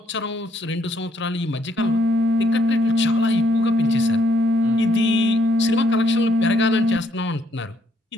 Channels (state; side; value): normal; both; correlation 0.70